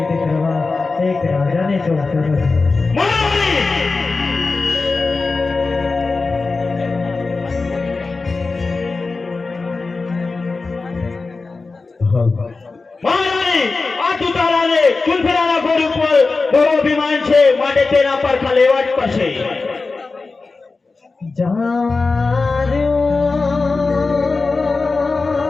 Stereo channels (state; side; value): quieter; right; 3.9 dB